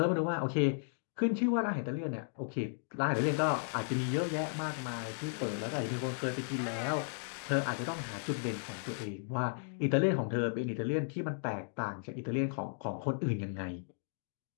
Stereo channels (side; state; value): right; silent; digital silence